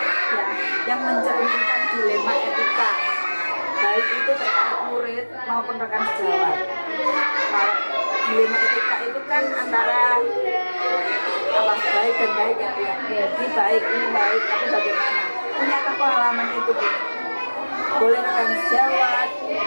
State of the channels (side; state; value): both; inverted; correlation -1.00